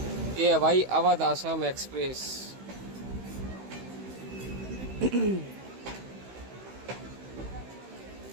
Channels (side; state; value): left; late; 16 ms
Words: ये है भाई अवध आसाम एक्सप्रेस।